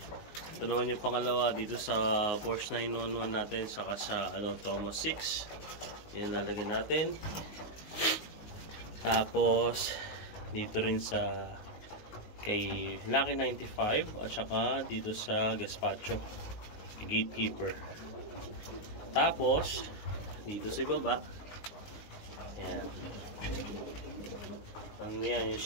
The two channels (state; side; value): late; right; 19 ms